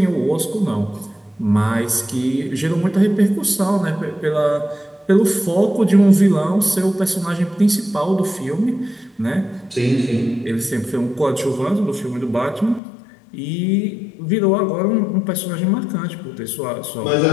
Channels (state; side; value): drops out; right; at 12.8 s